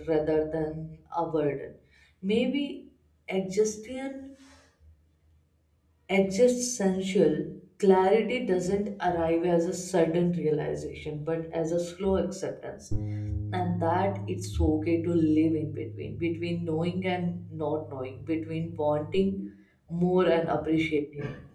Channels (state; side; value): identical; both; correlation 1.00